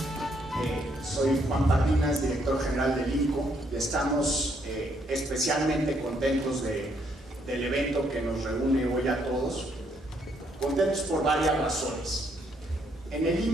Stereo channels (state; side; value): normal; both; correlation 0.72